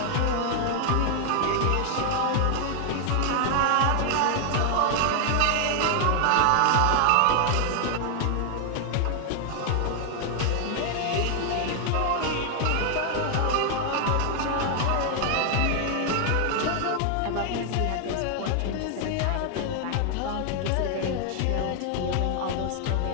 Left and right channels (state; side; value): different; both; correlation 0.00